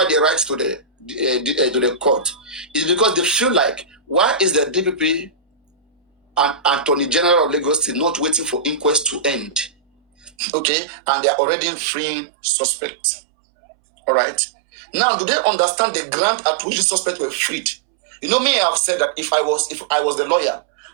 they write to the court is because they feel like, why is the DPP and Attorney General of Lagos State not waiting for inquest to end? Okay, and they are already freeing suspects. All right. Now, do they understand the grant at which the suspects were freed? You know, me, I have said that if I was the lawyer,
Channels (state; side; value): drops out; left; at 10.3 s